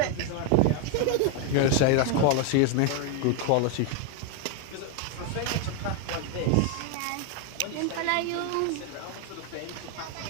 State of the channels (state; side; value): different; both; correlation 0.01